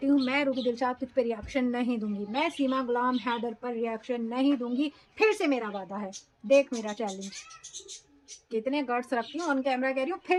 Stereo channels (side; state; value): both; identical; correlation 1.00